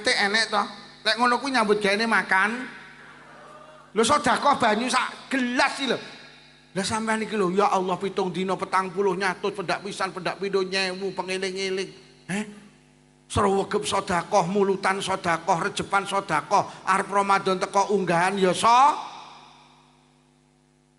enek to. Lek ngono kuwi nyambut gaene makan. Lho sedekah banyu sak gelas iki lho. Lah sampean iki lho ya Allah 7 dina 40 nyatus pendak pisan pendak pindho nyewu pengeling-eling. Srewegep sedekah, mulutan sedekah, rejepan sedekah, arep Ramadan teko unggahan ya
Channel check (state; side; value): identical; both; correlation 1.00